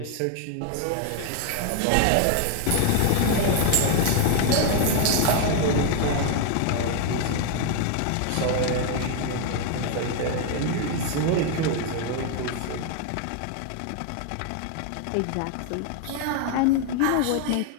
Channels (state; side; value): different; both; correlation 0.00